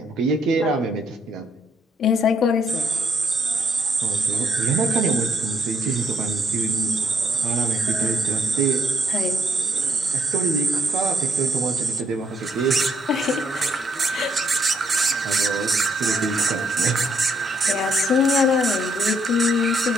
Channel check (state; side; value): normal; both; correlation 0.72